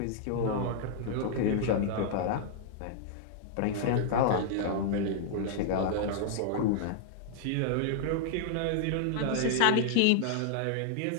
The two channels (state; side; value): different; both; correlation -0.01